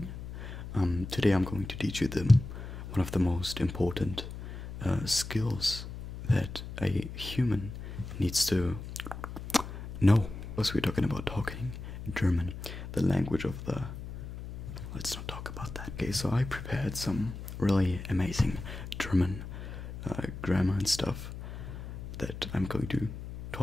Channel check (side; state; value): left; noise; hum, 9 dB below the sound